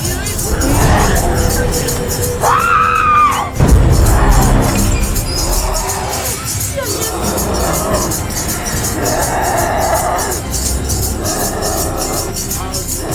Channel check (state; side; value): identical; both; correlation 1.00